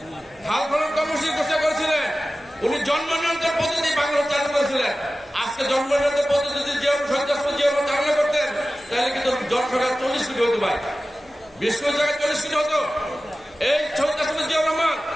খাল খনন কর্মসূচি ঘোষণা করেছিলেন। উনি জন্ম নিয়ন্ত্রণ পদ্ধতি বাংলাদেশ চালু করেছিলেন। আজকে জন্ম নিয়ন্ত্রণ পদ্ধতি যদি শহীদ রাষ্ট্রপতি জিয়া রহমান চালনা করতেন তাহলে কিন্তু জনসংখ্যা 40 কোটি হতো ভাই, 20 কোটি জায়গায় 40 কোটি হতো। এই শহীদ রাষ্ট্রপতি জিয়া রহমান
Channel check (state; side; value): noise; left; hum, 30 dB below the sound